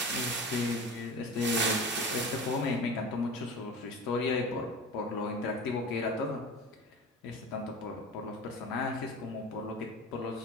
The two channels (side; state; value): both; normal; correlation 0.34